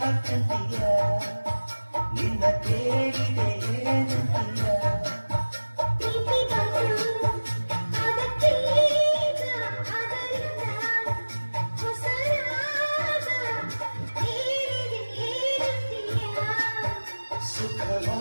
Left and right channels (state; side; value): inverted; both; correlation -1.00